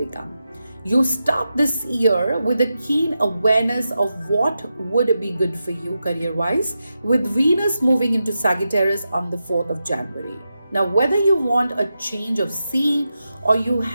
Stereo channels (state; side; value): inverted; both; correlation -0.89